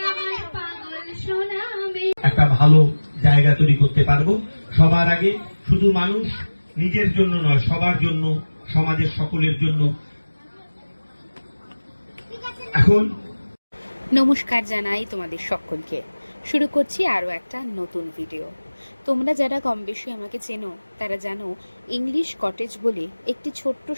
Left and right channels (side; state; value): both; inverted; correlation -1.00